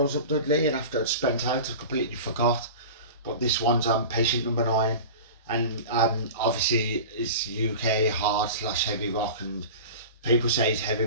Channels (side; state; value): both; inverted; correlation -0.33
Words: was up Dudley, and after I'd spent out, I completely forgot. But this one's Patient Number 9, and obviously it's UK hard / heavy rock, and people say it's heavy